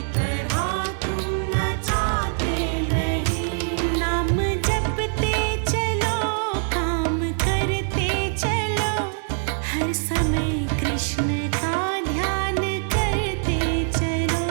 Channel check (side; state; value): left; silent; 63 dB below the other